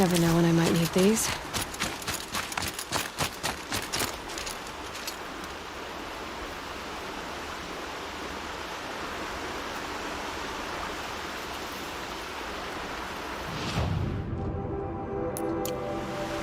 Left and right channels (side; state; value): both; identical; correlation 1.00